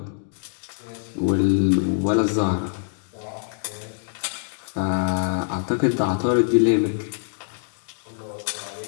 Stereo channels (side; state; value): right; silent; digital silence